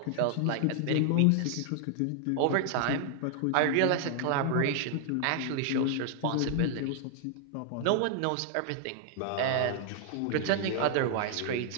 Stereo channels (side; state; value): both; different; correlation 0.00